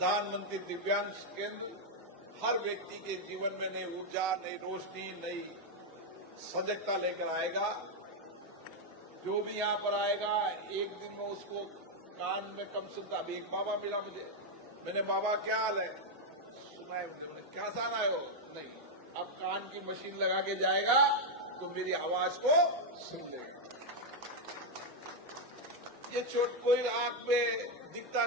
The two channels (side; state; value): both; normal; correlation 0.01